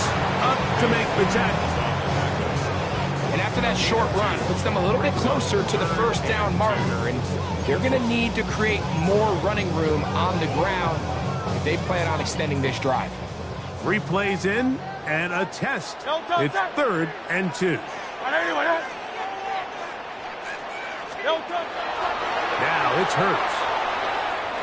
up to make the tackle. And after that short run, puts them a little bit closer to the first down marker. And they're going to need to create more running room on the ground if they plan on extending this drive. 3 plays in. And a test. It's 3rd and 2. Now it's Hurts.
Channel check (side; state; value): both; identical; correlation 1.00